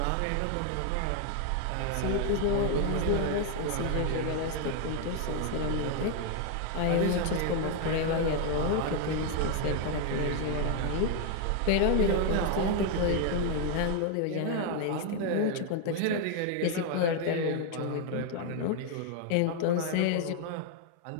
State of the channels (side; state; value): both; different; correlation 0.00